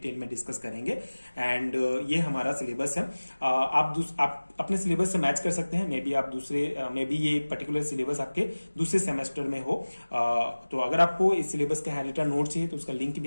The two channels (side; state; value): both; inverted; correlation -1.00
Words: में डिस्कस करेंगे। एंड ये हमारा सिलेबस है। आप अपने सिलेबस से मैच कर सकते हैं। मे बी ये पर्टिकुलर सिलेबस आपके दूसरे सेमेस्टर में हो। तो अगर आपको इस सिलेबस का हैंडरिटन नोट चाहिए तो उसका लिंक